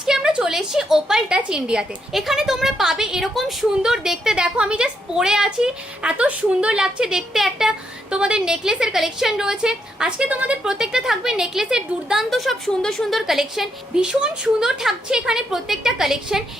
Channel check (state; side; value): normal; both; correlation 0.78